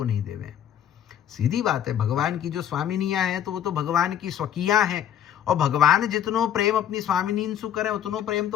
नहीं देवे। सीधी बात है, भगवान की जो स्वामिनियां हैं तो वो तो भगवान की स्वकीयां हैं, और भगवान जितनो प्रेम अपनी स्वामिनीन सु करें उतनो प्रेम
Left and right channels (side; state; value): right; quieter; 10.0 dB